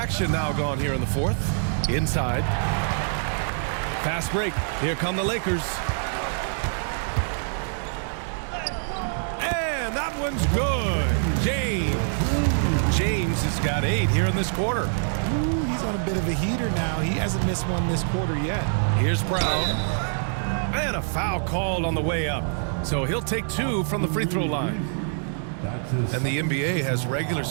now gone here in the fourth. Inside. Fast break. Here come the Lakers. And that one's good. James has got 8 here in this quarter. Ooh, he's on a bit of a heater now. He hasn't missed one this quarter yet. Here's Brown. And a foul called on the way up. So he'll take 2 from the free throw line. And the NBA has regular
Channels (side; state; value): left; silent; digital silence